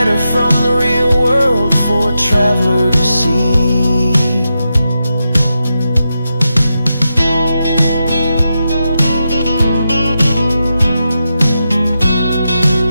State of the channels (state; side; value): inverted; both; correlation -0.88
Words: from the real world for a traveler to see.